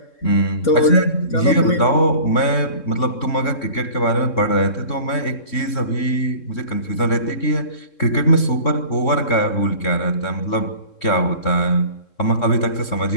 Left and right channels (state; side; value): late; right; 3.7 ms